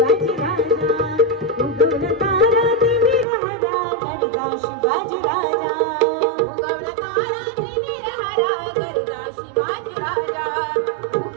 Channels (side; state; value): left; drops out; at 3.2 s